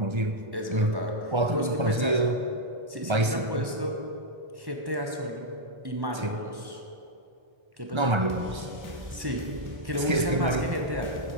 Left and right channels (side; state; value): left; late; 1.3 ms